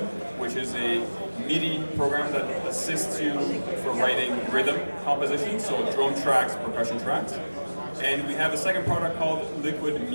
which is a MIDI program that assists you for writing rhythm composition, so drone tracks, percussion tracks. And we have a second product called Liquid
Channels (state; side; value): inverted; both; correlation -1.00